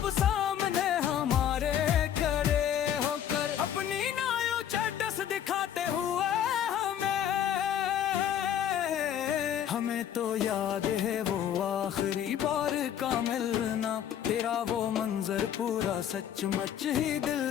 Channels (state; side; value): quieter; right; 9.9 dB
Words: सामने हमारे खड़े होकर अपनी नायो चैटस दिखाते हुए हमें तो याद है वो आखिरी बार का मिलना, तेरा वो मंजर पूरा सचमुच ही